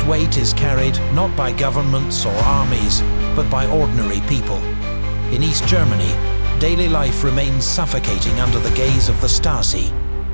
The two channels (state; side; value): inverted; both; correlation -1.00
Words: weight is carried not by governments or armies, but by ordinary people. In East Germany, daily life remains suffocating under the gaze of the Stasi.